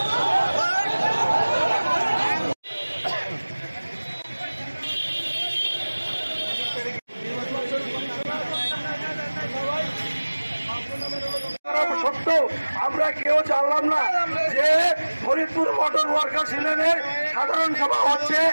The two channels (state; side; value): inverted; both; correlation -1.00